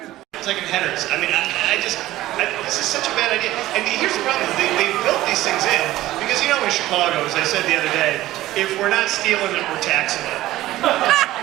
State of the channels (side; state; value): left; quieter; 15.7 dB